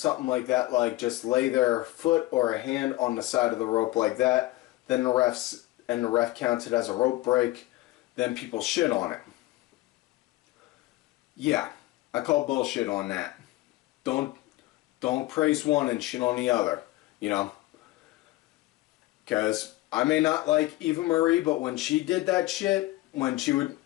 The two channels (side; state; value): right; quieter; 18.1 dB